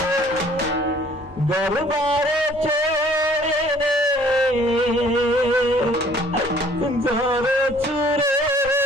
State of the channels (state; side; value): normal; both; correlation 0.56